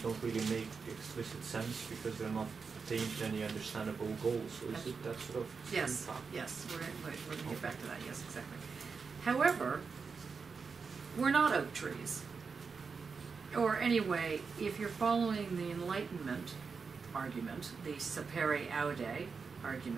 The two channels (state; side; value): quieter; left; 5.2 dB